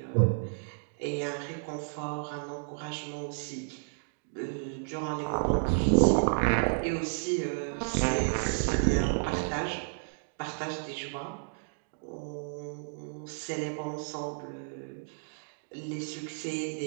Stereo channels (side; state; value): left; silent; digital silence